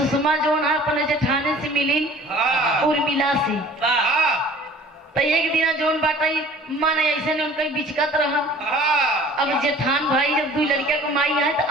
जो है अपने जेठाने से मिली उर्मिला से। तो एक दिन जोन बाटा मन ऐसे ने उनका बिचकत रहा। अब जेठान भाई जब 2 लड़किया को माई है तो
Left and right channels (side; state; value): both; normal; correlation 0.48